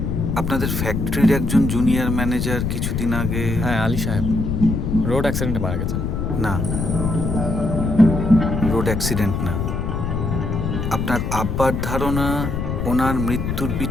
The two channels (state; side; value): noise; left; rumble, 2 dB below the sound